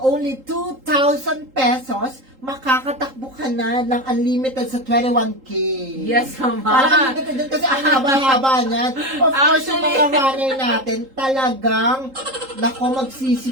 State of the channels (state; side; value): late; left; 3.8 ms